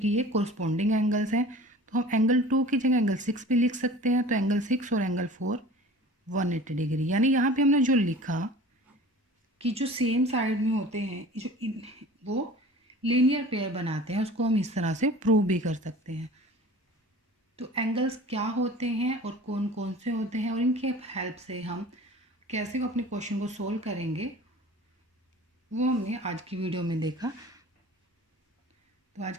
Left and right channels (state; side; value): normal; both; correlation 0.42